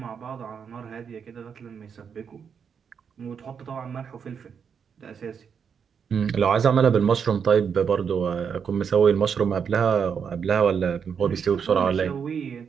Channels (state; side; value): quieter; left; 6.9 dB